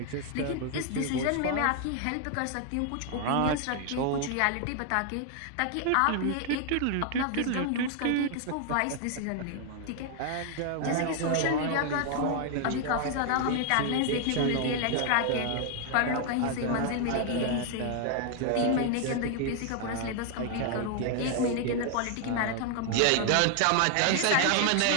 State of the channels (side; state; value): both; different; correlation 0.00